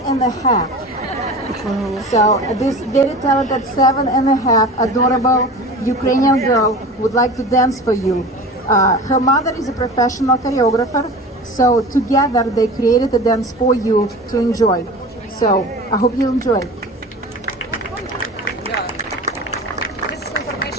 So this very talented 7.5 adorable Ukrainian girl would like to dance for you. Her mother is a professional choreographer, so together they created a dance for you to enjoy. So I hope you enjoy. This is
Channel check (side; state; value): both; normal; correlation 0.35